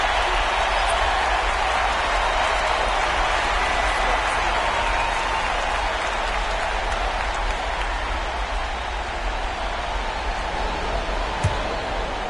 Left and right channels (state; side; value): identical; both; correlation 1.00